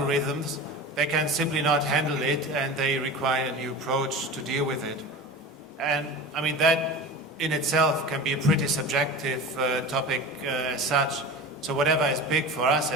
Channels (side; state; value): both; normal; correlation 0.32